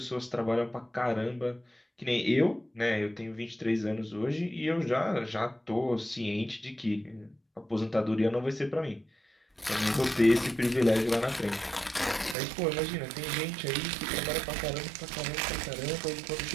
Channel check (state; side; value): drops out; left; at 12.4 s